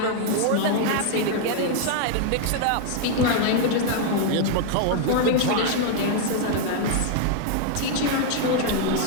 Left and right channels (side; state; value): both; different; correlation 0.00